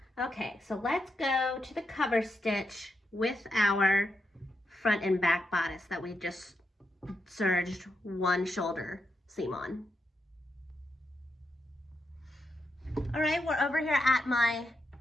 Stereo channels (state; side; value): normal; both; correlation 0.84